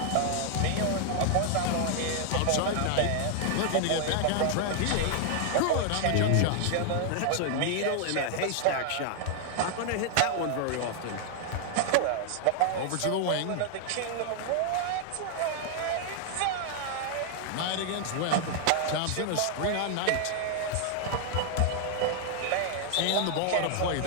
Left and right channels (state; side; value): different; both; correlation 0.00